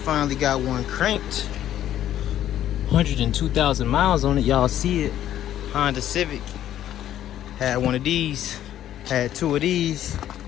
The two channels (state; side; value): quieter; right; 11.7 dB